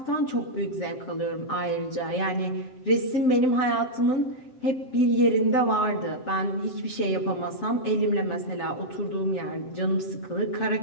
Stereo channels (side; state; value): right; late; 7.7 ms